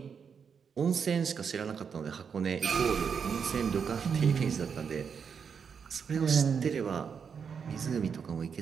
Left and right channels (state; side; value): quieter; left; 6.5 dB